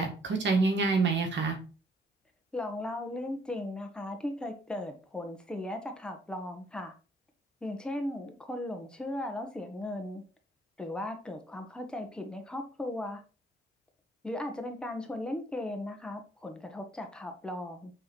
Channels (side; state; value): both; normal; correlation 0.66